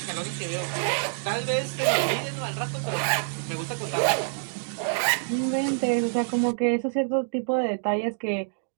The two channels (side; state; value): left; silent; digital silence